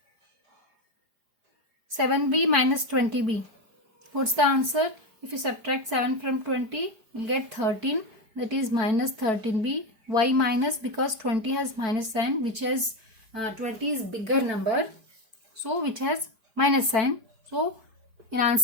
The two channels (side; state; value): left; late; 4.9 ms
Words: 7b minus 20b. What's the answer? If you subtract 7 from 20, you'll get 13. That is minus 13b. Why minus? Because 20 has minus sign, which has 20 is bigger number, so which has minus sign. So in